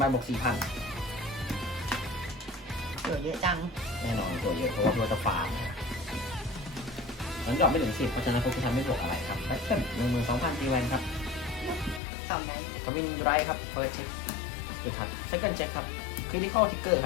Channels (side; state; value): right; drops out; at 12.0 s